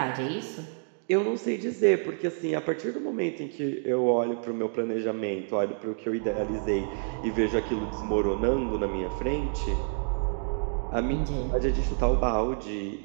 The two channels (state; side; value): silent; left; 59 dB below the other